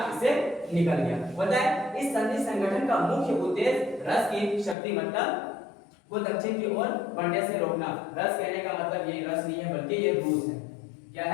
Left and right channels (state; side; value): drops out; right; at 4.8 s